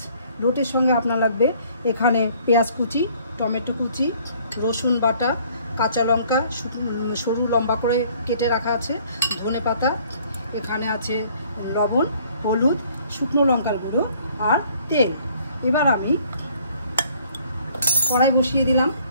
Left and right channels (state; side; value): inverted; both; correlation -0.59